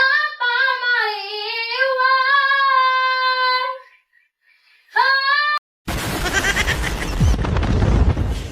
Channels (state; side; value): identical; both; correlation 1.00